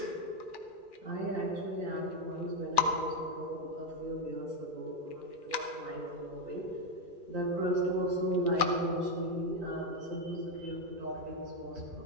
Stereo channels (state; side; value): late; left; 2.4 ms